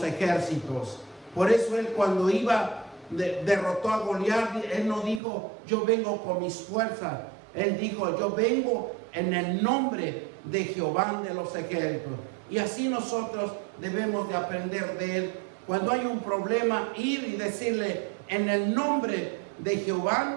ejércitos. Por eso él, cuando derrotó a Goliat, él no dijo: yo vengo con mis fuerzas. Él dijo: yo vengo en el nombre de Jehová de los ejércitos. Y así nosotros debemos de aprender de él. Cuando hay un problema, ir y decirle: en el nombre de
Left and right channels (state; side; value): drops out; left; at 5.2 s